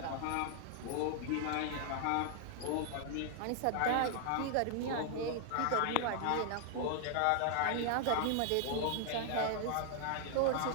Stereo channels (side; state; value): both; different; correlation 0.00